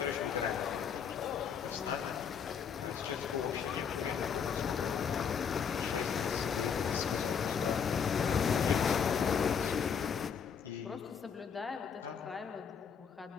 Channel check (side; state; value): right; quieter; 7.0 dB